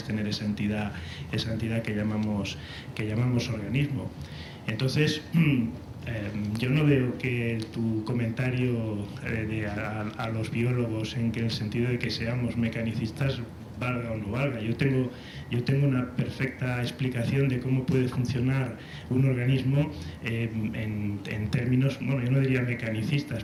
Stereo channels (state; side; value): identical; both; correlation 1.00